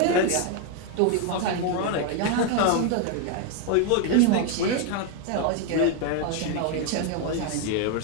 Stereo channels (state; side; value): different; both; correlation 0.01